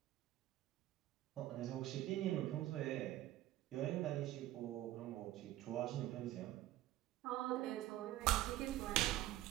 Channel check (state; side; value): quieter; left; 15.0 dB